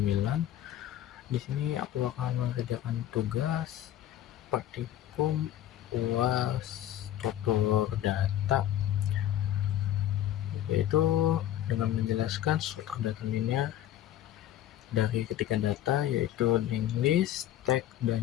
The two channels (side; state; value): right; quieter; 12.3 dB